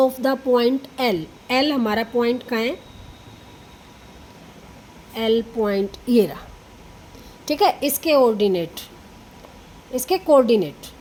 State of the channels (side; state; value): both; identical; correlation 1.00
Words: the point L, L हमारा पॉइंट कहाँ है, एल पॉइंट ये रहा, ठीक है। इसके ऑर्डिनेट, इसके कोऑर्डिनेट,